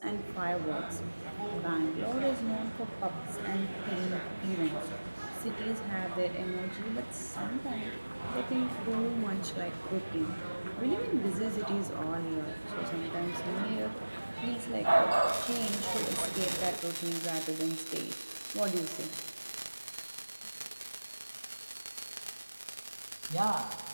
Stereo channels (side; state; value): both; inverted; correlation -1.00